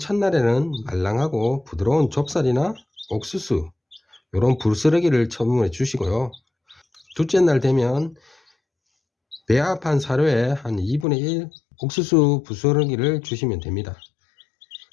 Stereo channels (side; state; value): right; drops out; at 11.1 s